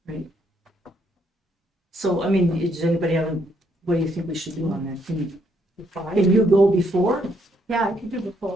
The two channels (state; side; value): normal; both; correlation 0.72